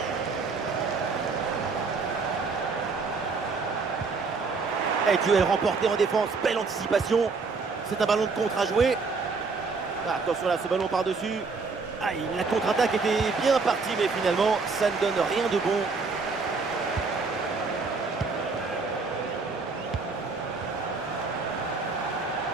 Et duel remporté en défense, belle anticipation. C'est un ballon de contre à jouer. Ah, attention là, ce ballon par-dessus. Ah, la contre-attaque était bien partie, mais finalement, ça ne donne rien de bon.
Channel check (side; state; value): left; quieter; 4.4 dB